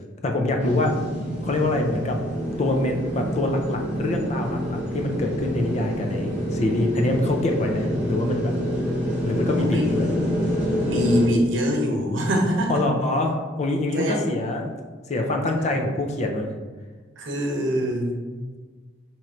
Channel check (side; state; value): both; normal; correlation 0.63